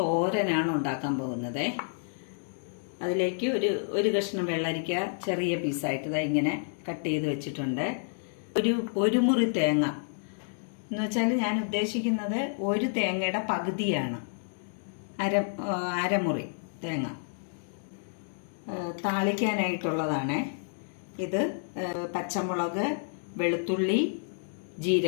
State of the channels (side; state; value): right; silent; digital silence